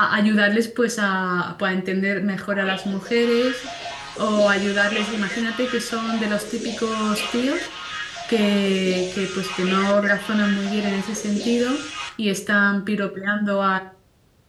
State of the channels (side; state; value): both; identical; correlation 1.00